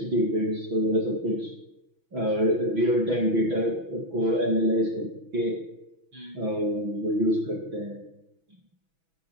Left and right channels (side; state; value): left; late; 6.1 ms